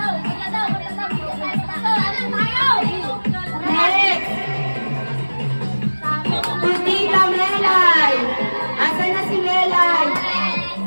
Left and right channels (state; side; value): inverted; both; correlation -1.00